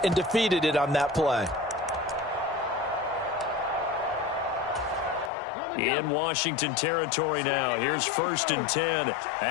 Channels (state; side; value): drops out; right; at 5.3 s